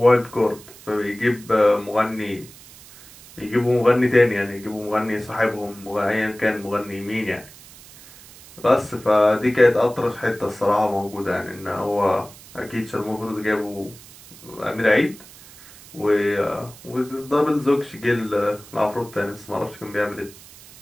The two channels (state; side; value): noise; right; hiss, 20 dB below the sound